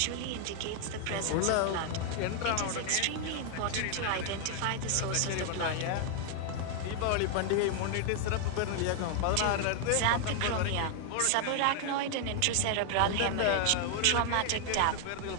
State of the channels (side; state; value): both; different; correlation 0.00